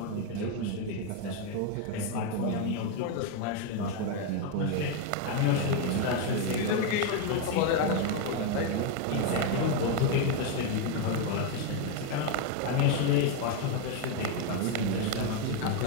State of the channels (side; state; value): both; different; correlation 0.02